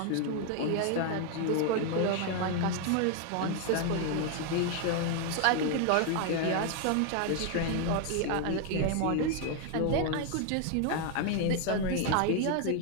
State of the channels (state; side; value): different; both; correlation 0.00